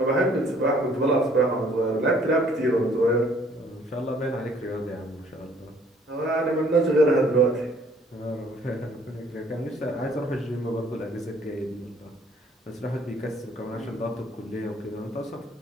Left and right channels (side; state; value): both; normal; correlation 0.60